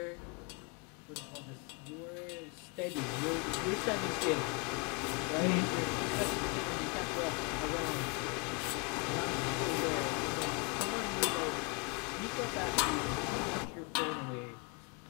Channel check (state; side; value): quieter; right; 31.5 dB